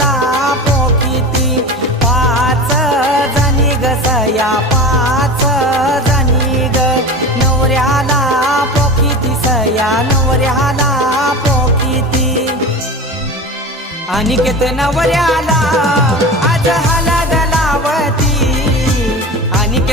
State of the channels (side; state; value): both; normal; correlation 0.30